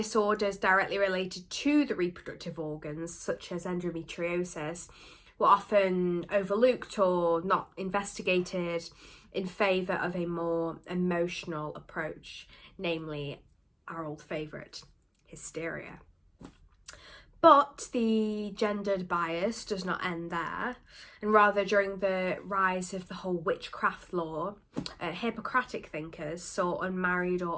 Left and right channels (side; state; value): both; identical; correlation 1.00